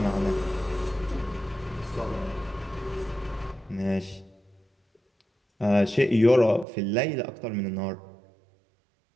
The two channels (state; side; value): drops out; left; at 6.7 s